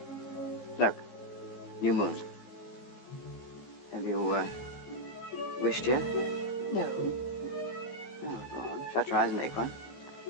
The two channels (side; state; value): right; late; 15 ms